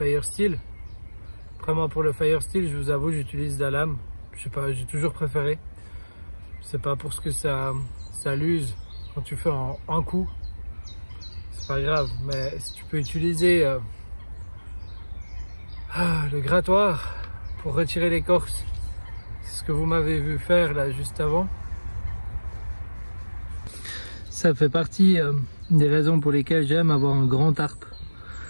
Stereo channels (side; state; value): both; inverted; correlation -1.00